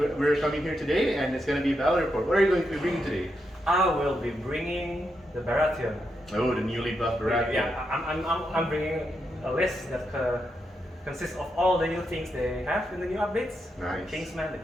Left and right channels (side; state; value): both; normal; correlation 0.83